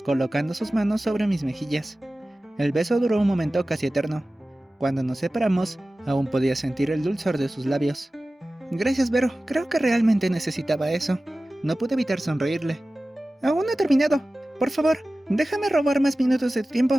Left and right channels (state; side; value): normal; both; correlation 0.96